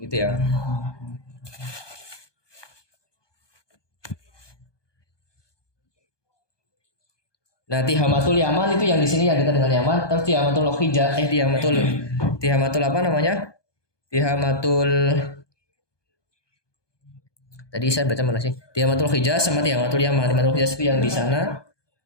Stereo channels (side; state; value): right; late; 1.2 ms